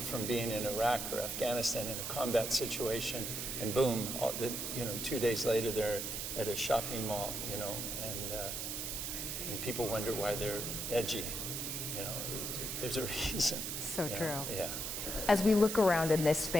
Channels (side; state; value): right; noise; hiss, 3 dB below the sound